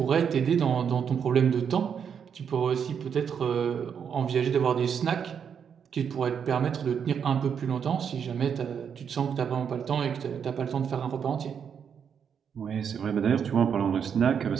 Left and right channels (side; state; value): left; quieter; 7.4 dB